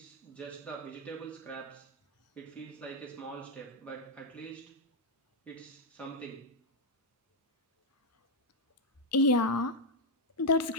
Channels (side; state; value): both; normal; correlation 0.01